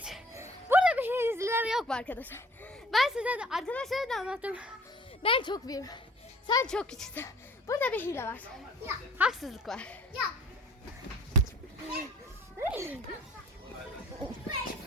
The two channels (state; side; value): normal; both; correlation 0.51